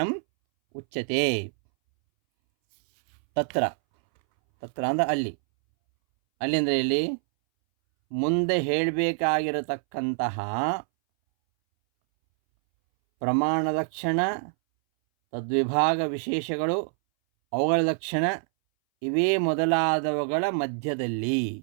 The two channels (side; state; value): left; silent; 61 dB below the other